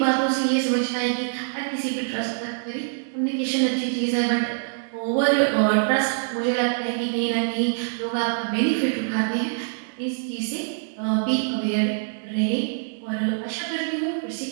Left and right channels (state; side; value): silent; left; digital silence